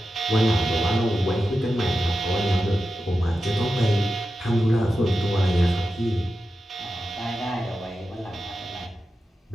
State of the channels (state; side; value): normal; both; correlation 0.91